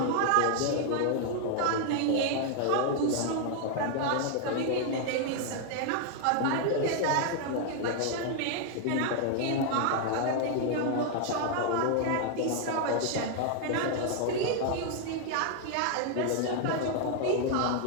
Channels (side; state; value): both; different; correlation 0.00